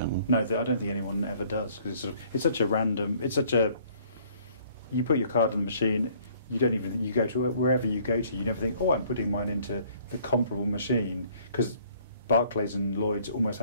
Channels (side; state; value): both; inverted; correlation -0.60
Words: No, I don't think anyone ever does, because it's such a random. You put your card in the machine. You don't even. You go to wherever you go to. You never think, oh, I'm putting mine into the comparable machine, because Barclays and Lloyd's almost